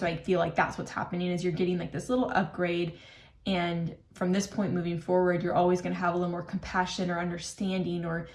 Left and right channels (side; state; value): both; identical; correlation 1.00